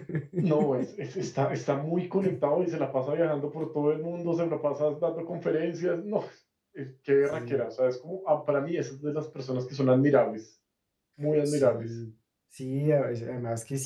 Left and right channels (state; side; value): identical; both; correlation 1.00